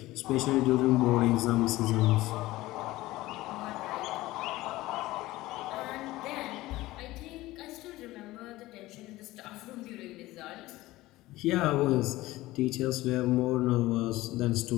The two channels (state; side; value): quieter; right; 17.9 dB